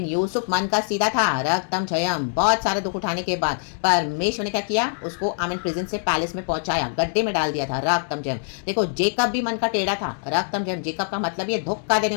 यूसुफ मन का सीधा था। रक्तम जयम। बहुत सारे दुख उठाने के बाद परमेश्वर ने क्या किया? उसको आमेन प्रिजन से पैलेस में पहुंचाया, गड्ढे में डाल दिया था। रक्तम जयम। देखो, जेकब भी मन का टेढ़ा था। रक्तम जयम। जेकब का मतलब ये धोखा देने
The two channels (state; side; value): silent; right; digital silence